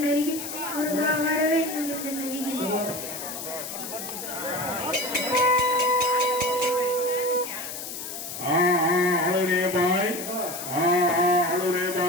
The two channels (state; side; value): noise; left; hiss, 8 dB below the sound